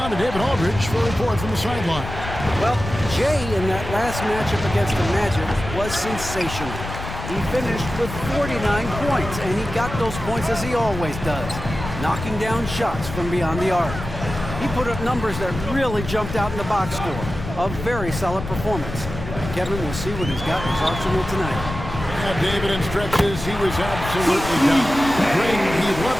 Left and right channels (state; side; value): noise; left; rumble, 8 dB below the sound